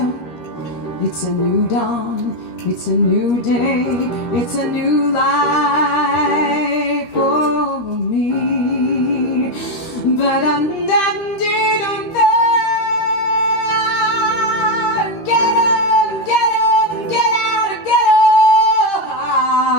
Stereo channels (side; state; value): right; late; 13 ms